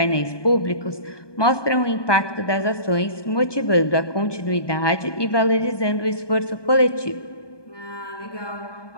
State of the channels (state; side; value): late; right; 1.2 ms